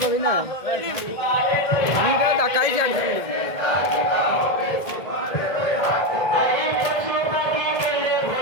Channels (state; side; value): late; right; 1.8 ms